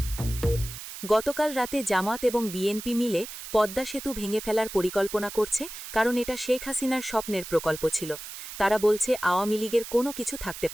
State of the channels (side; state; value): right; noise; hiss, 11 dB below the sound